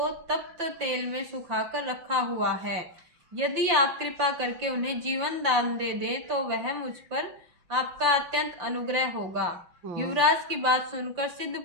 तप्त तेल में सुखाकर रखा हुआ है। यदि आप कृपा करके उन्हें जीवन दान दे दें तो वह मुझ पर आपका अत्यंत अनुग्रह होगा। युवराज की बात सुनकर सिद्ध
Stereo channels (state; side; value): late; left; 5.8 ms